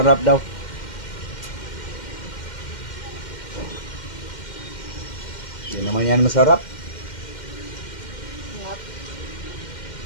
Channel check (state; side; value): late; right; 2.1 ms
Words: daw. Hindi naman yan masarap Sarap.